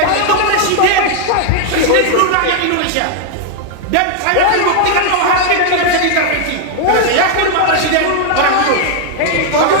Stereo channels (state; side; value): different; both; correlation 0.00